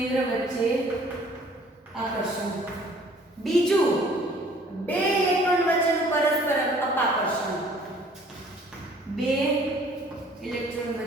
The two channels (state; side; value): normal; both; correlation 0.55